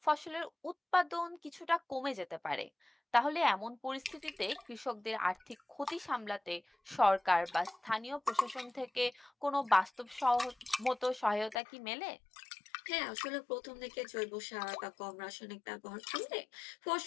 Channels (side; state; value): right; drops out; at 11.6 s